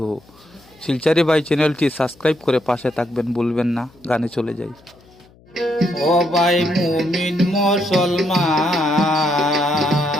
শিলচারি ভাই চ্যানেলটি সাবস্ক্রাইব করে পাশে থাকবেন, ভুলবেন না। গানে চলে যাই। ও ভাই মুমিন মুসলমান,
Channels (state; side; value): noise; left; hum, 28 dB below the sound